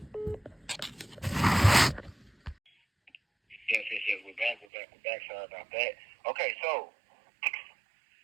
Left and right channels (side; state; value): left; drops out; at 4.7 s